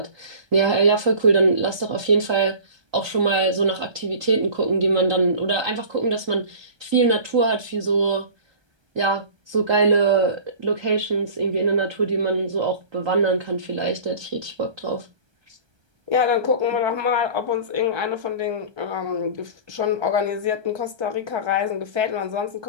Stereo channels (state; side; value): late; left; 1.3 ms